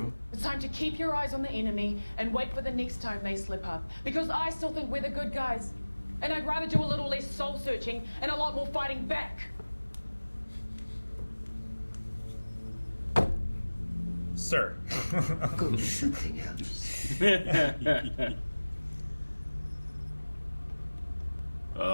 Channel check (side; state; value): both; inverted; correlation -1.00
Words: them. It's time to keep your eyes on the enemy and wait for the next time they slip up. Because I still think we're the good guys. And I'd rather do a little less soul searching and a lot more fighting back. Sir. Go do something else.